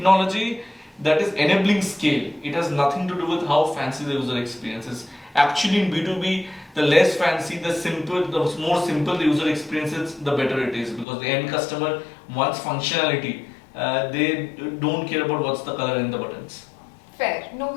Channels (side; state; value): right; drops out; at 11.1 s